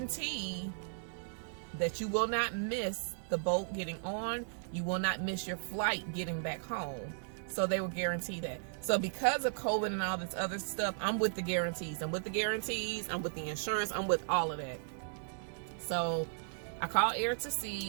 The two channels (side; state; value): left; silent; digital silence